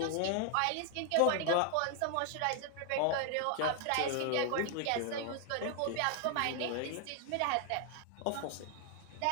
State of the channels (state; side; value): different; both; correlation 0.00